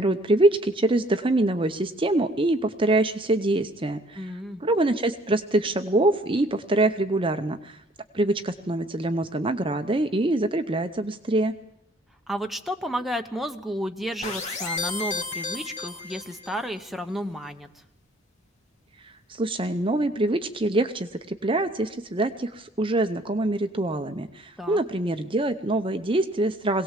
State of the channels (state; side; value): normal; both; correlation 0.59